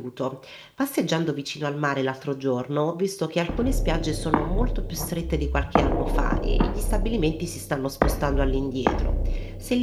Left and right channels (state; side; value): identical; both; correlation 1.00